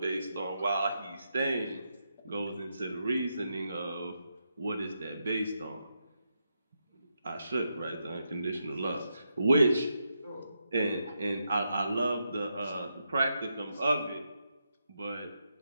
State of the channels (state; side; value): inverted; both; correlation -0.84